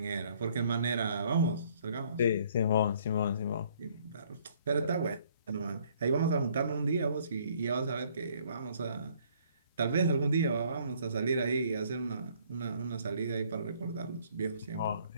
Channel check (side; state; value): both; inverted; correlation -0.62